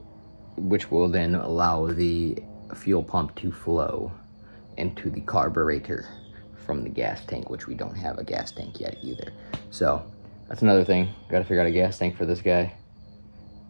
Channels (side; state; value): both; inverted; correlation -1.00